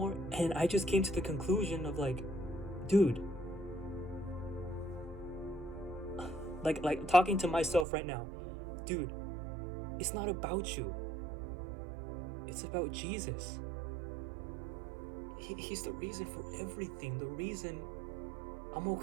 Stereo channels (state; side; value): drops out; left; at 7.9 s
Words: And I just came to the conclusion of, like, dude, like talking to myself right now, dude, it's not about you. It's about Jesus. He's the reason for everything. The reason I'm